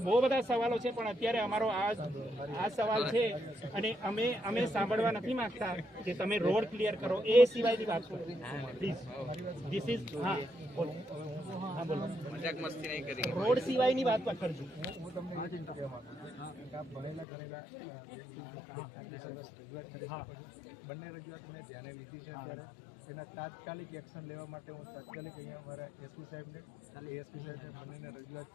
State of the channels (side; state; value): right; drops out; at 17.2 s